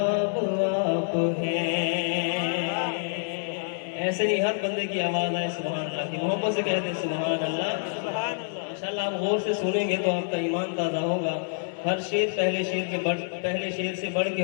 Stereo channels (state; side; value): silent; right; digital silence